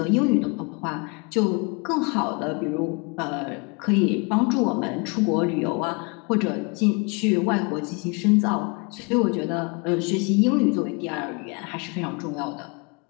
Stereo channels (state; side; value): quieter; right; 31.1 dB